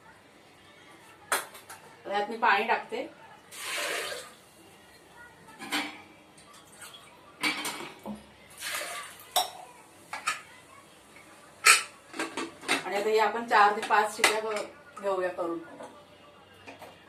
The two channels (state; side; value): identical; both; correlation 1.00